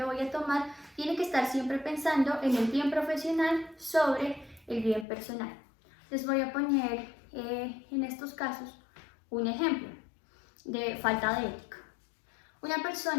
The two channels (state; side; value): drops out; right; at 5.1 s